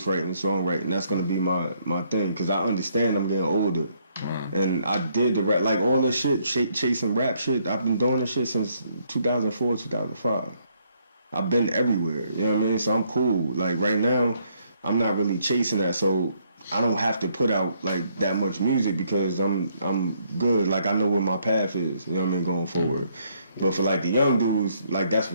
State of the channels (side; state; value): both; inverted; correlation -0.70